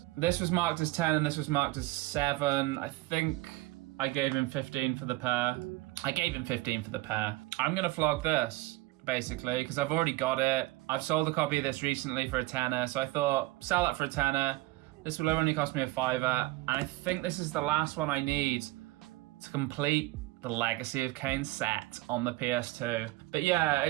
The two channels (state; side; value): quieter; left; 19.8 dB